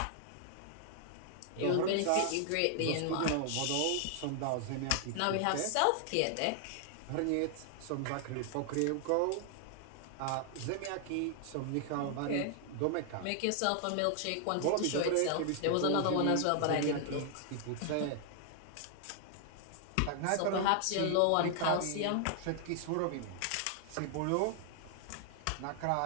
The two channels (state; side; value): different; both; correlation 0.00